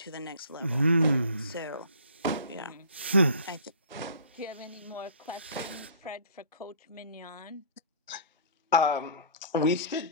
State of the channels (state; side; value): inverted; both; correlation -0.46